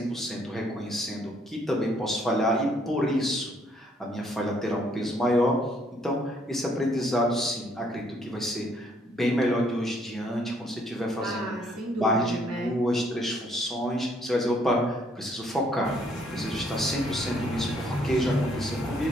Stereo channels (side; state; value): both; normal; correlation 0.67